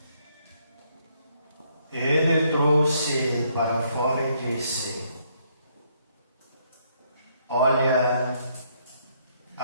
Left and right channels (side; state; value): both; inverted; correlation -0.71